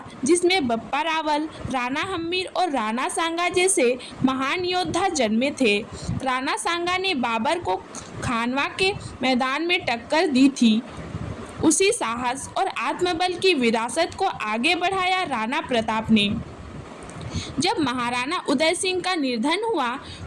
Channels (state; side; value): identical; both; correlation 1.00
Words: जिसमें बप्पा रावल, राणा हम्मीर और राणा सांगा जैसे महान योद्धा जन्मे थे। राणा सांगा ने बाबर को खानवा के मैदान में टक्कर दी थी। उसी साहस और आत्मबल की विरासत को आगे बढ़ाया राणा प्रताप ने। जब महाराणा उदय सिंह का निर्धन हुआ